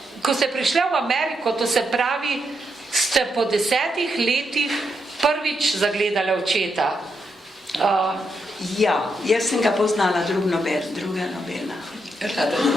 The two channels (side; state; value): both; normal; correlation 0.82